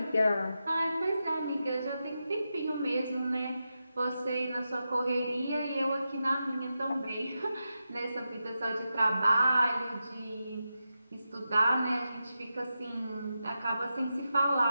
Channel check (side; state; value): both; inverted; correlation -0.89